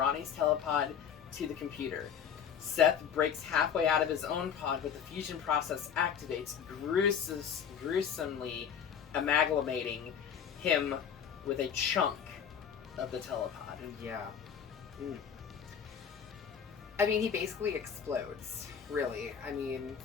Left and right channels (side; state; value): right; quieter; 7.8 dB